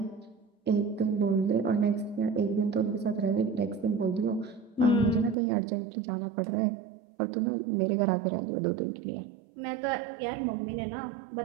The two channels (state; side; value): drops out; left; at 5.4 s